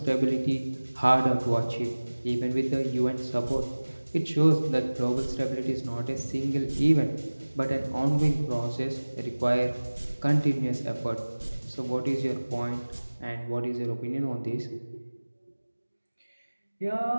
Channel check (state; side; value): inverted; both; correlation -1.00